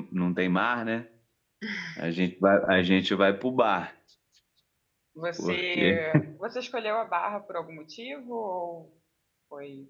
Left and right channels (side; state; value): both; identical; correlation 1.00